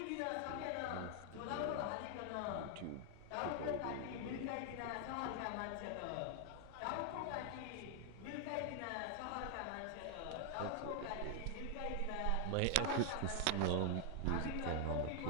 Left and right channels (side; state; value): both; different; correlation 0.00